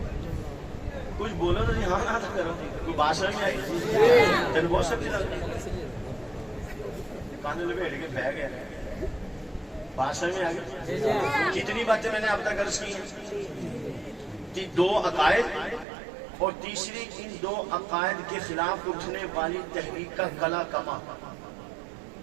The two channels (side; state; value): left; drops out; at 15.9 s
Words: کچھ بولو تو ہاں نہ کرو. کوئی بات سمجھ میں آئی؟ تین بہت سب چیز کانے لپیٹ کے بہ گیا. بات سمجھ میں آ گئی؟ کتنی باتیں میں نے اب تک عرض کی ہیں؟ 2 عقائد اور تیسری ان 2 عقائد کے خلاف اٹھنے والی تحریک کا کلا کما.